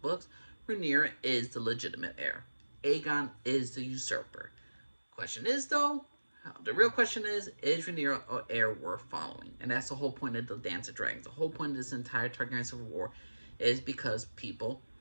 Rhaenyra is the legitimate heir. Aegon is the usurper. Question is, though, the real question is Rhaenyra an heir worth following? And that's the whole point of the Dance of Dragons. The whole point of this entire Targaryen Civil War is because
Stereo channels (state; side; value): inverted; both; correlation -1.00